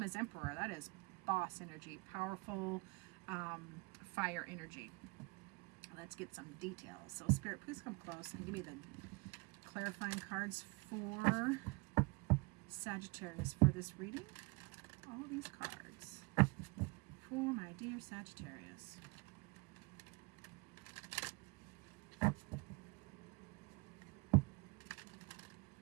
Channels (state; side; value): quieter; left; 27.4 dB